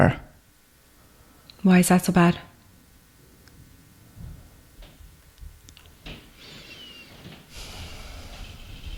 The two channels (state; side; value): identical; both; correlation 1.00